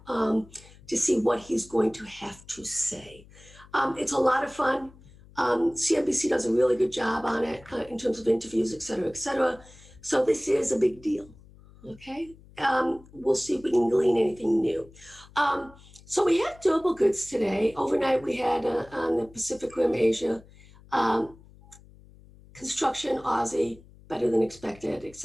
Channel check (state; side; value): noise; left; hum, 23 dB below the sound